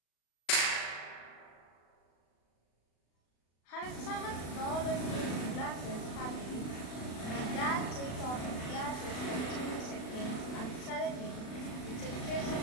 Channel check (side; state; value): right; late; 36 ms